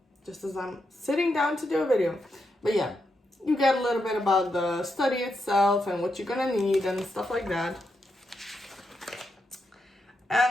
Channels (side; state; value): both; normal; correlation 0.83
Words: just as I'm sitting down to do a video. But yeah, you get a little bit about the study itself and what you're gonna need and stuff like that.